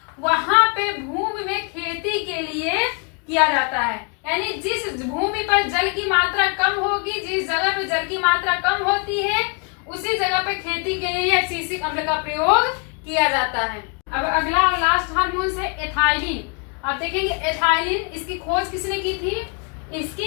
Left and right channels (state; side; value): quieter; right; 35.1 dB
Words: वहां पे भूमि में खेती के लिए किया जाता है। यानी जिस भूमि पर जल की मात्रा कम होगी, जिस जगह पे जल की मात्रा कम होती है उसी जगह पे खेती के लिए एब्सिसिक अम्ल का प्रयोग किया जाता है। अब अगला और लास्ट हार्मोन है एथाइलिन। आप देखेंगे एथाइलिन, इसकी खोज किसने की थी?